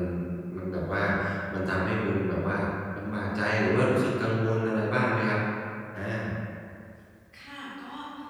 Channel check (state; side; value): identical; both; correlation 1.00